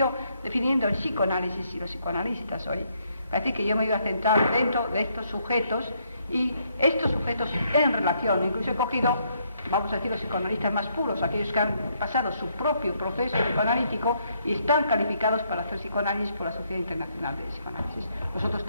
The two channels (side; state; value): both; inverted; correlation -0.72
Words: definiendo el psicoanálisis y los psicoanalistas hoy. Parece que yo me iba a centrar dentro de estos sujetos y estos sujetos en relación, incluso he cogido, vamos a decir, los psicoanalistas más puros, aquellos que han pasado su propio proceso psicoanalítico y están calificados para hacer psicoanálisis por la Sociedad Internacional de Psicoanálisis. Vosotros